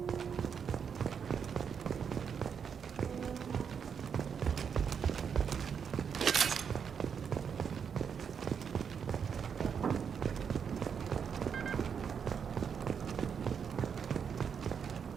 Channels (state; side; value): quieter; left; 7.0 dB